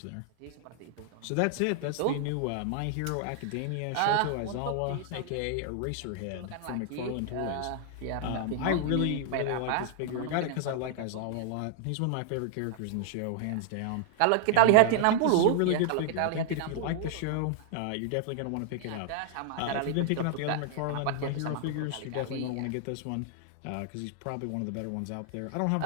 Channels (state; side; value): different; both; correlation 0.00